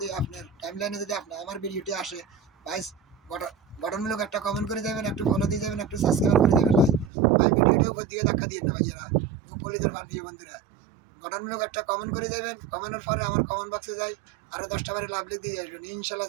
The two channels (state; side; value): drops out; left; at 7.1 s